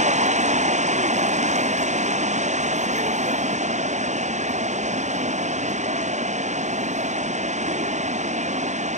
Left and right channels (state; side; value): late; left; 0.34 ms